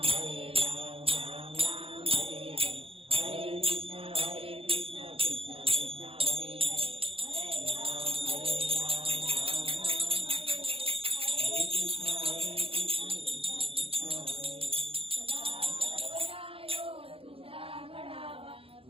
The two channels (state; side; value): late; left; 0.27 ms